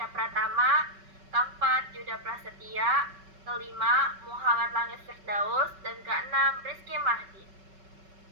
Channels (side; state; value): left; late; 5.3 ms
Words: Pratama, keempat Yuda Prasetya, kelima Muhammad Langit Firdaus, dan keenam Rizky Mahdi.